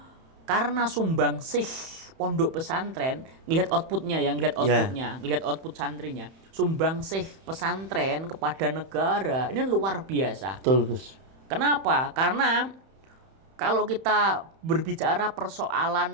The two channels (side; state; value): left; late; 31 ms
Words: karena sumbangsih pondok pesantren, lihat outputnya, lihat output santrinya, sumbangsih pesantren kepada negara ini luar biasa. Betul, Gus. Kenapa? Karena kalau kita berbicara